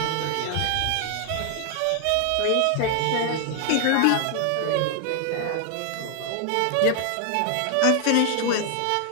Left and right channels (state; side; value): different; both; correlation 0.00